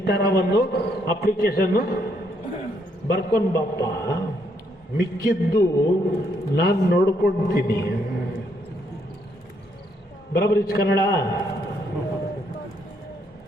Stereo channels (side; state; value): both; normal; correlation 0.73